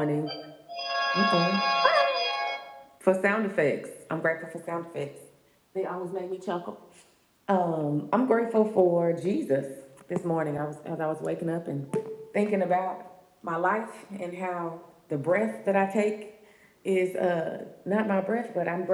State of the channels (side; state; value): both; identical; correlation 1.00